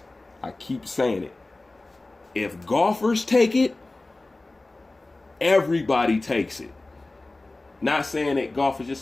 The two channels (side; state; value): right; quieter; 3.0 dB